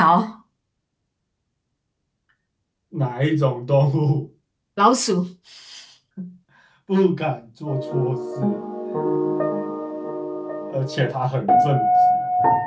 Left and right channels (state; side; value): identical; both; correlation 1.00